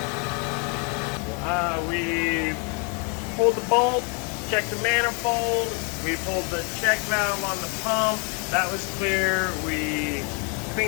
We pulled the bolt, checked the manifold, we pulled the check valve on the pump, that was clear. We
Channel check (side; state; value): right; quieter; 36.0 dB